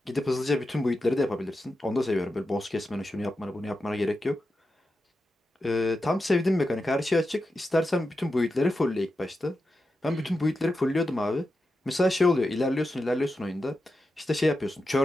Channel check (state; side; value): normal; both; correlation 0.90